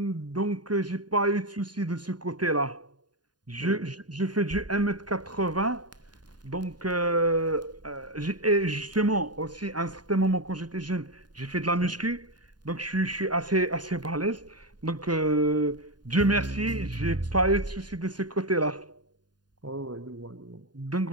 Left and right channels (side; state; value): left; late; 0.70 ms